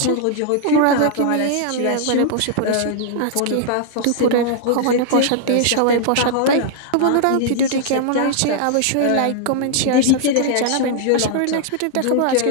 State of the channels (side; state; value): both; different; correlation -0.01